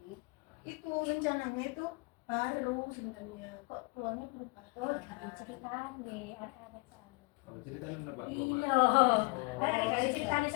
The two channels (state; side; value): quieter; right; 29.4 dB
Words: itu rencananya itu baru sebenarnya, kok tuanya berubah. Oh, dari cerita nih, ada soalnya. Oh, ceritanya apa? Iya, dari cerita nih